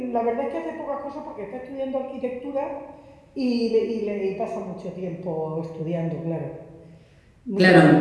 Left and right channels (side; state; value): both; identical; correlation 1.00